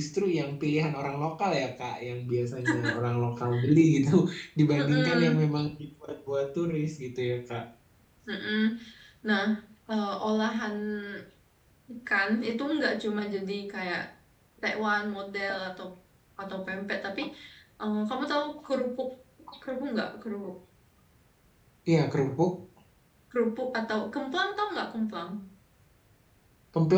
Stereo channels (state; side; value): identical; both; correlation 1.00